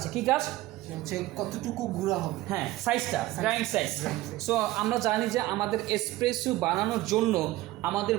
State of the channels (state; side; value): quieter; left; 17.1 dB